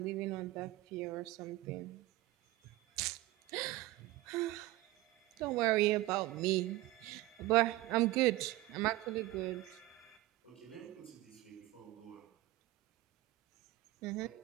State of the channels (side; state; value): left; quieter; 18.3 dB